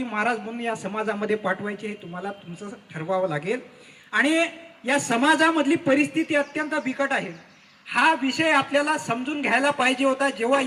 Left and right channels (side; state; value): both; identical; correlation 1.00